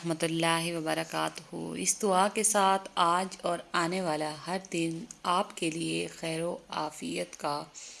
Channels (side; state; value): both; identical; correlation 1.00